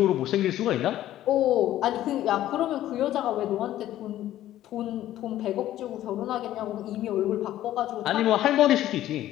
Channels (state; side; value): quieter; right; 13.3 dB